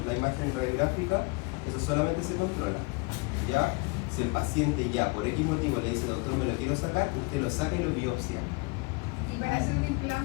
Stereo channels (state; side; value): quieter; right; 27.9 dB